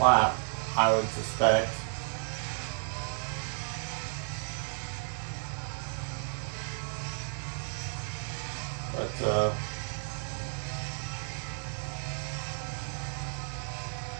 I would suspect. But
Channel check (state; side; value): silent; left; 56 dB below the other